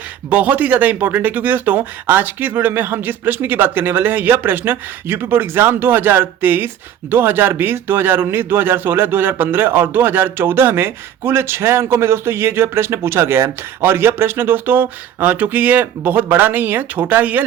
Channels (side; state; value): left; quieter; 10.0 dB